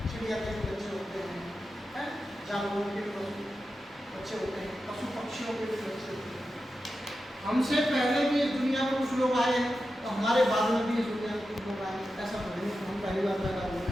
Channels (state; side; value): normal; both; correlation 0.91